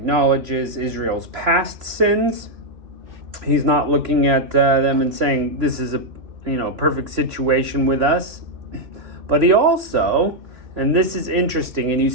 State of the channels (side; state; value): left; late; 3.0 ms